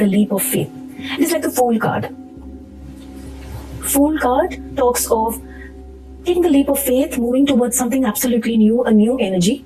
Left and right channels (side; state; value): both; identical; correlation 1.00